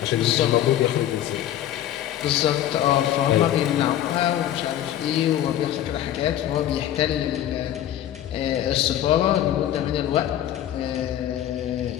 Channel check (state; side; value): quieter; right; 11.8 dB